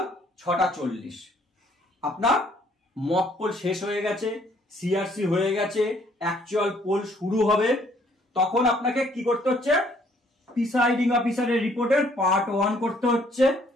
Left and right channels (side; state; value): both; normal; correlation 0.63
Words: 6:40 আপনার মকপল শেষ হয়ে গেছে, সিআরসি হয়ে গেছে, অ্যাকচুয়াল পোল শুরু হবে। তখন আপনাকে কি করতে হচ্ছে, প্রিসাইডিং অফিসারের রিপোর্টের পার্ট 1 করতে হচ্ছে